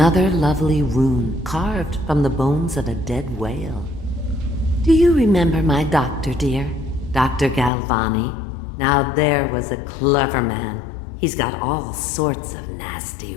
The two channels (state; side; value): drops out; right; at 7.7 s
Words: lovely rune carved from the bones of a dead whale. Do you remember my doctor, dear? Dr. Galvani? Now there was a clever man. He's got all sorts of